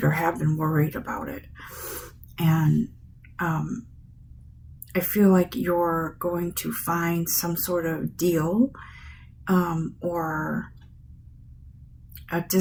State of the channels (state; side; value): identical; both; correlation 1.00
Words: or have been worried about it. And I feel like you're going to find some sort of deal or a